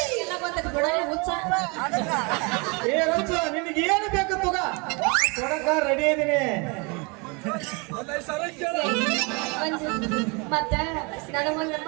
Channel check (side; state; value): left; quieter; 30.3 dB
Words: ಎಲ್ಲ ಬಂದಕ್ಕೆ ಬಿಡೋಣ ಹುಚ್ಚ ರಚ್ಚು ನಿನಗೆ ಏನು ಬೇಕು ತುಗ ಕೊಡಕ ರೆಡಿ ಇದೀನಿ ಮತ್ತ ನನಗೊಂದು